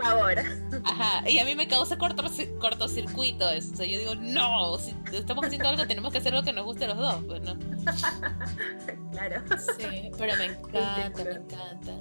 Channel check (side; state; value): both; inverted; correlation -1.00